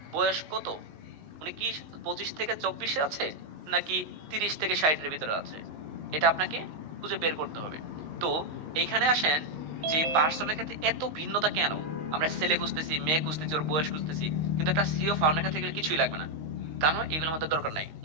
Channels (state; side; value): late; left; 19 ms